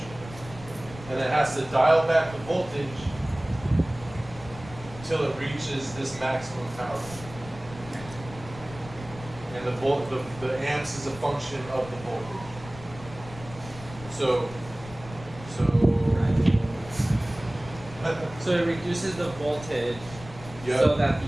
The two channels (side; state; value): left; noise; rumble, 16 dB below the sound